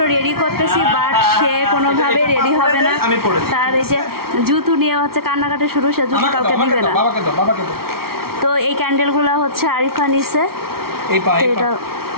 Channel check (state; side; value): late; left; 0.94 ms